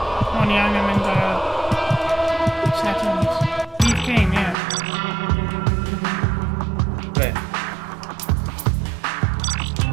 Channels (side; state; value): left; drops out; at 4.5 s